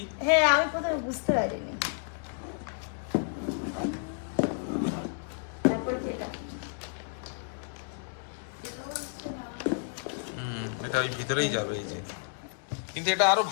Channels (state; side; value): silent; right; 57 dB below the other